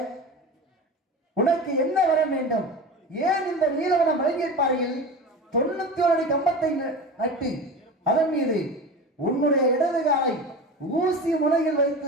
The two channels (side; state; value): both; normal; correlation 0.30